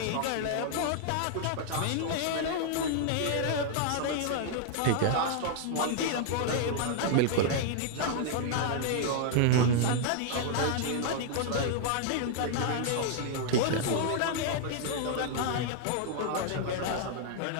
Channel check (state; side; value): different; both; correlation 0.00